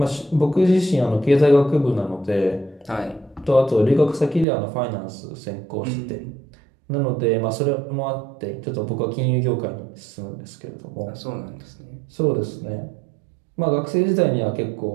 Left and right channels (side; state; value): left; drops out; at 4.5 s